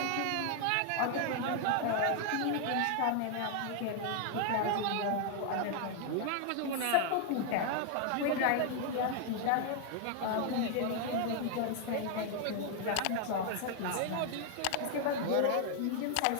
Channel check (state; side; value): different; both; correlation 0.00